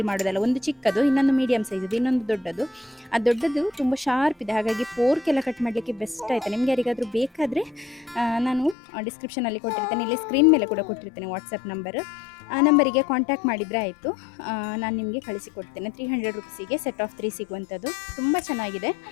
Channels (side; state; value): right; drops out; at 8.8 s